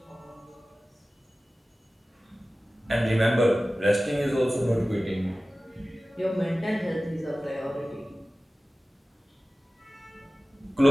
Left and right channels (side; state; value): both; normal; correlation 0.96